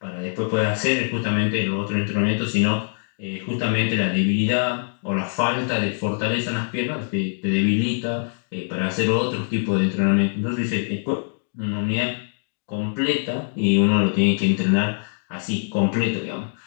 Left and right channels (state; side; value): silent; right; digital silence